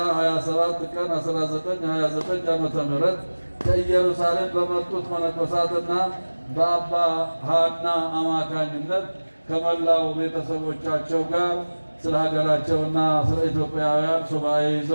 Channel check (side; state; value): both; inverted; correlation -1.00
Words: 27 ቀን 1929 ዓመተ ምህረት ከኢየሩሳሌም በመጡት መነኮሳትና በአባ ሐና አማካኝነት ከመላው ቤተሰቦቻቸው ጋር ስለ ሀገራቸውና ስለ ኢትዮጵያውያን ሱባኤ